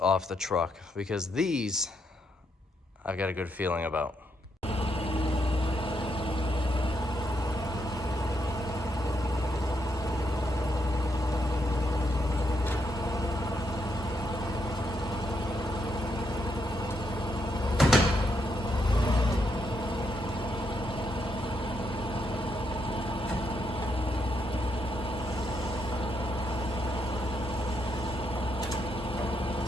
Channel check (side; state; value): both; normal; correlation 0.78